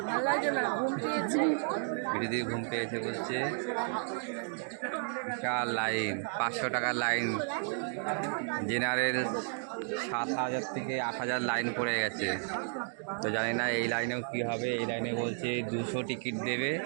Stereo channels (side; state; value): left; silent; 56 dB below the other